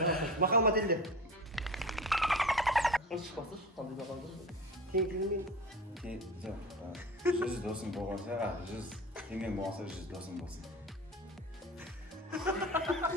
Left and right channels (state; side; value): normal; both; correlation 0.32